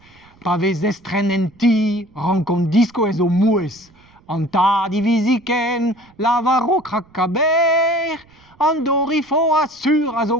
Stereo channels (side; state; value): right; noise; rumble, 29 dB below the sound